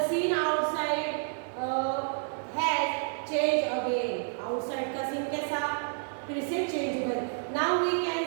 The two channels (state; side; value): silent; left; 58 dB below the other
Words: scene outside has change again. Outside का सीन कैसा, फिर से चेंज हुआ. Now we can